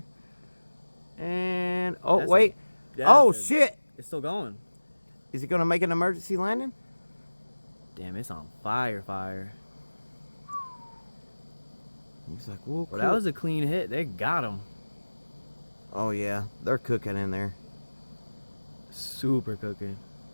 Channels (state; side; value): inverted; both; correlation -1.00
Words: And oh That's wait, shit! It's still going. Is he gonna make an emergency landing? Damn, it's on fire. He's like, whoa, Well, that was a clean hit. They got him. Oh yeah, they're cooking in there. Super cooking.